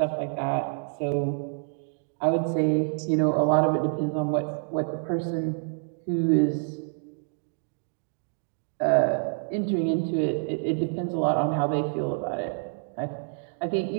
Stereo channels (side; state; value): left; silent; 60 dB below the other